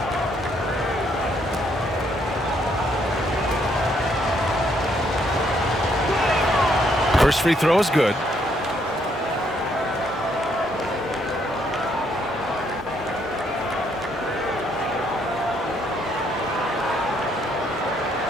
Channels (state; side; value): normal; both; correlation 0.71